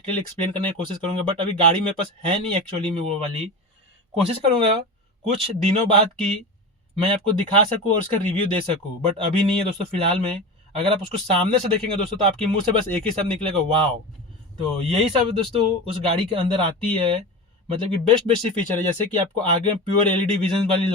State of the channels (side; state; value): both; normal; correlation 0.26